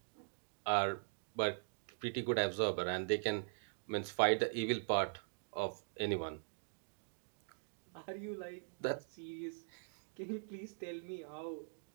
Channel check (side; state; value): left; silent; digital silence